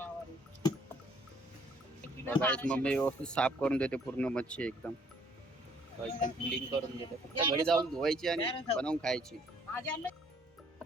बघा एक मम्मी व्यवस्थित साफ करून देते पूर्ण मच्छी एकदम एकदम क्लीन करून देते फक्त घरी जाऊन धुवायची आणि बनवून खायची.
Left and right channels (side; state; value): both; normal; correlation 0.62